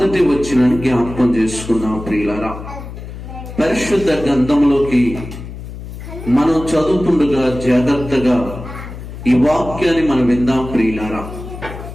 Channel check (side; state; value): left; noise; hum, 11 dB below the sound